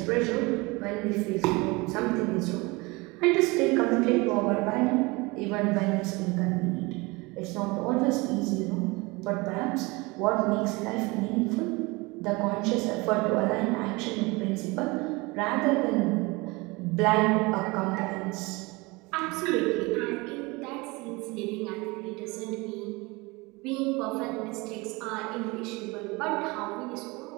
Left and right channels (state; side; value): quieter; left; 24.7 dB